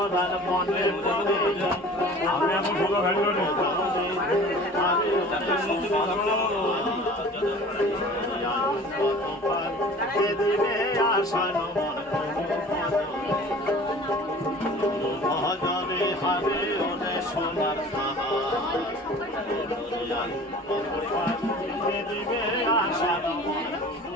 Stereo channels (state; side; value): normal; both; correlation 0.44